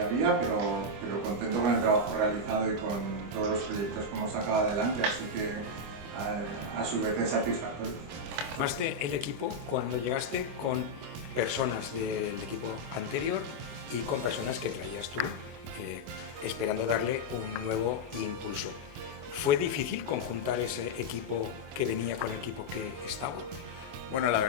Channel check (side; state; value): left; late; 25 ms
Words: pero contento con el trabajo realizado y con todos los proyectos que hemos sacado adelante, así que a su vez es satisfactorio. Formaste el equipo cuando llegaste con personas del equipo anterior y con personas que traías tú, esperando darle un nuevo impulso. ¿Fue difícil conjuntar ese equipo que venía con el equipo que estaba? Bueno, la